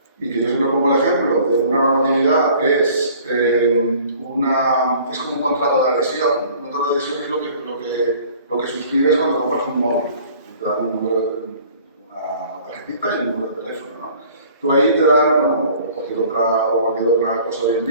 y que yo siempre pongo el ejemplo de una normatividad es como un contrato de adhesión. Un contrato de adhesión es lo que suscribes cuando compras un móvil. Te dan una tarjetita y un número de teléfono, ¿no? Tú ahí te dan, bueno, cualquier otra cosa hoy en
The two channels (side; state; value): both; inverted; correlation -0.51